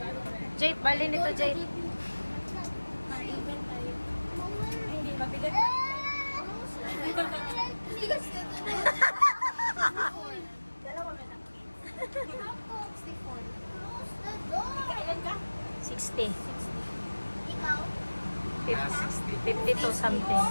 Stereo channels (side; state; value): both; inverted; correlation -1.00